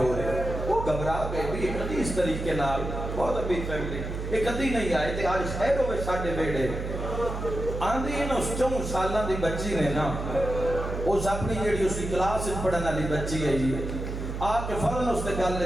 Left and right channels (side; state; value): right; noise; hum, 5 dB below the sound